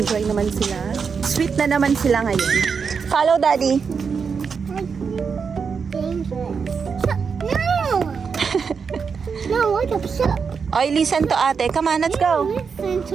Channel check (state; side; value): quieter; left; 5.8 dB